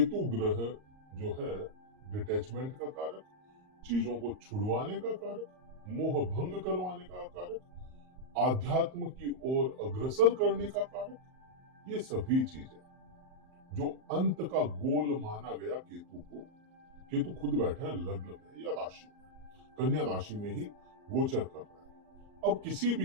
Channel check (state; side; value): late; left; 38 ms